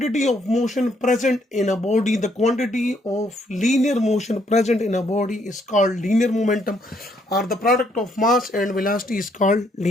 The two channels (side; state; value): both; normal; correlation 0.71